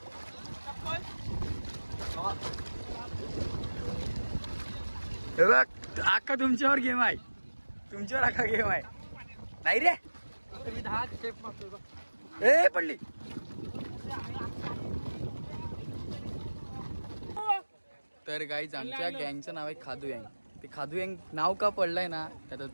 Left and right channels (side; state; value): both; inverted; correlation -1.00